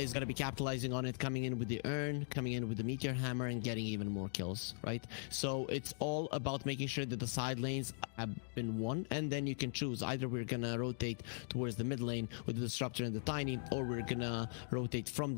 going to be capitalizing on it, coming in with the Urn, coming in with the Meteor Hammer, and getting even more kills, right? So it's all about making sure that the side lanes have been won, and then you can choose. Either we're going to rotate towards the mid lane with the Disruptor and the Tiny, or we're going to rotate from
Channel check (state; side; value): silent; right; digital silence